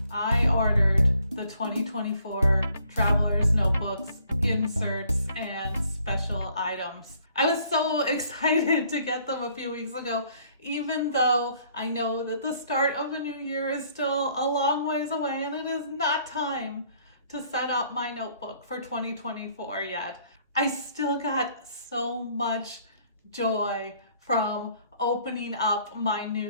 I ordered the 2024 Traveler's Notebooks, inserts, and special items. I was so excited to get them a few weeks ago, even though I know that the start of the new year is still a long ways away and it is not time to set up my notebook for 2024 yet. I still got so much joy from opening up my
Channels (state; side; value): inverted; both; correlation -0.63